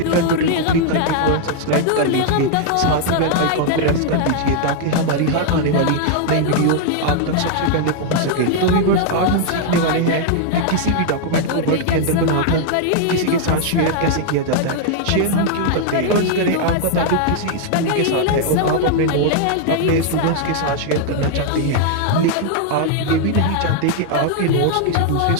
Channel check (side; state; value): both; different; correlation 0.00